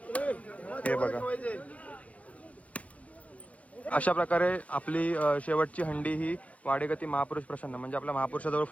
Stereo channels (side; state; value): right; late; 0.067 ms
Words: हे बघा अशा प्रकारे आपली शेवटची हंडी ही वाडेगती महापुरुष प्रसन्न म्हणजे आपल्या महापुरुषाजवळ